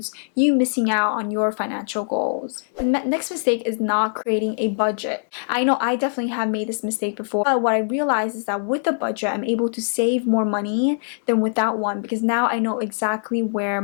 you missing out on your financial goals. The next mistake is not creating a budget. I know I definitely have made this mistake before, but what I realized is that with a budget, I'm able to save more money than without one, because now I know exactly where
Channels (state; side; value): silent; right; digital silence